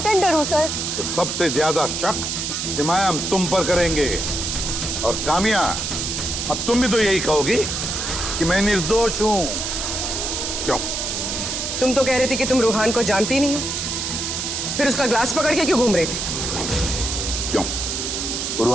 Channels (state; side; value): noise; right; hiss, 2 dB below the sound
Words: हूँ सर। तो सबसे ज्यादा शक सिमाया हम तुम पर करेंगे, और कामिया अब तुम भी तो यही कहोगी कि मैं निर्दोष हूँ। क्यों? तुम तो कह रही थी कि तुम रूहान को जानती नहीं हो, फिर उसका ग्लास पकड़ के क्यों घूम रही थी? क्यों?